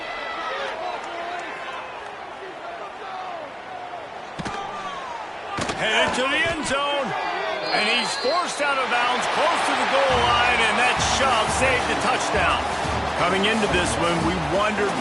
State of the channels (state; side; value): identical; both; correlation 1.00